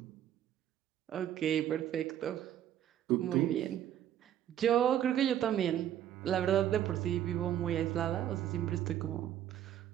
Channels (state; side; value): quieter; left; 11.1 dB